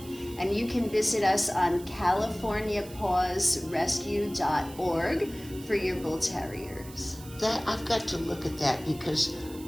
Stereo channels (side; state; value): right; noise; hiss, 18 dB below the sound